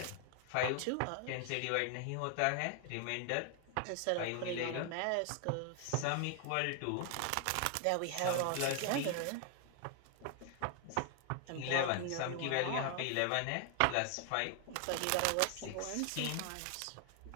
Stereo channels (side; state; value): both; different; correlation 0.00